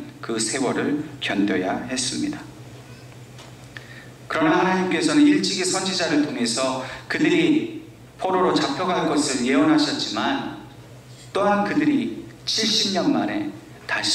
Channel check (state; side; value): identical; both; correlation 1.00